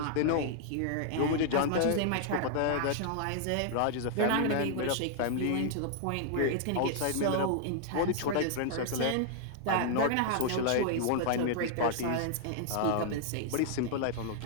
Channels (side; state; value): both; different; correlation -0.01